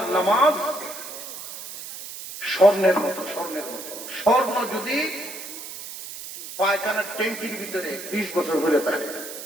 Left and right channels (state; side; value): noise; right; hiss, 11 dB below the sound